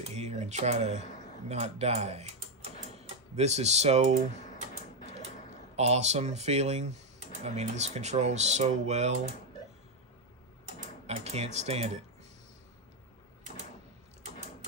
here and try to not die. This is so awesome feeling. I mean, this controls so well. I can't stand it.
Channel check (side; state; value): both; normal; correlation 0.04